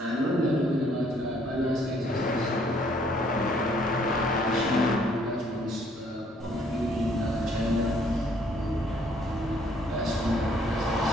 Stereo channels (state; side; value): normal; both; correlation 0.64